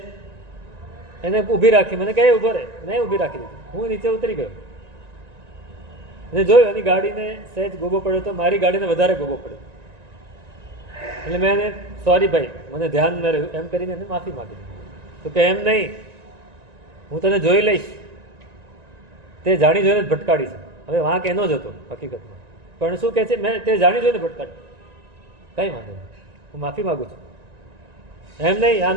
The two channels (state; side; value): late; left; 1.9 ms